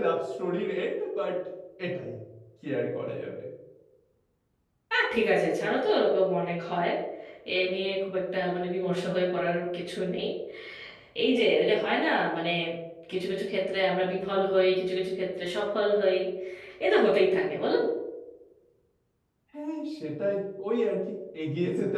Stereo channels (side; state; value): both; identical; correlation 1.00